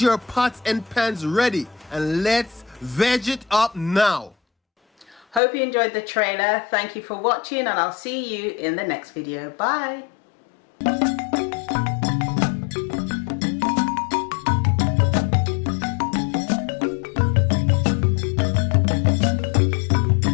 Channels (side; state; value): right; drops out; at 5.4 s